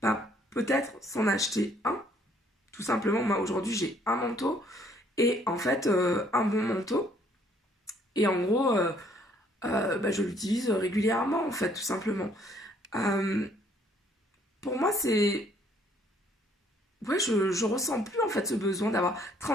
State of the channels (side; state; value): both; normal; correlation 0.63